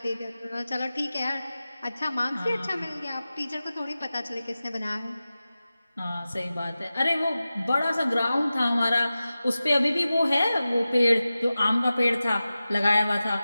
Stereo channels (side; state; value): both; inverted; correlation -0.95